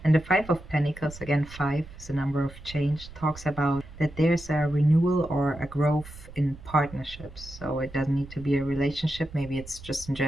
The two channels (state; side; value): noise; right; rumble, 17 dB below the sound